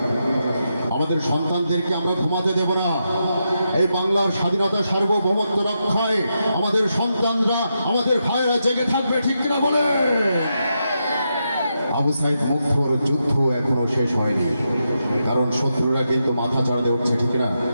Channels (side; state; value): both; inverted; correlation -0.85